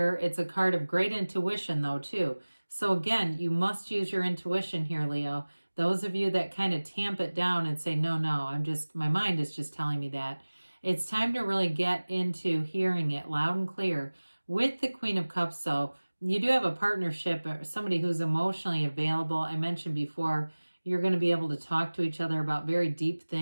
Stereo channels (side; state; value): both; inverted; correlation -1.00